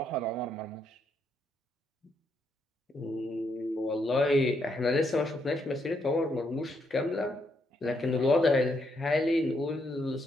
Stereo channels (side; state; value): both; normal; correlation 0.76